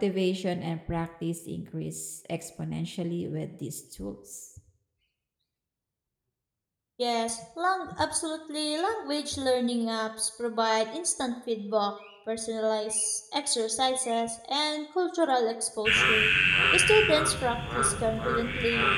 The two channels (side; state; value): both; identical; correlation 1.00